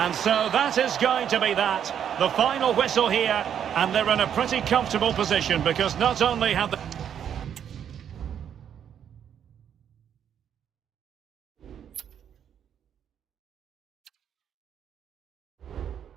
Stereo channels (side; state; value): left; quieter; 8.9 dB